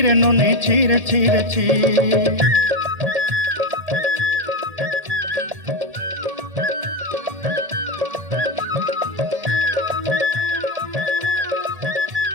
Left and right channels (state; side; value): late; left; 1.8 ms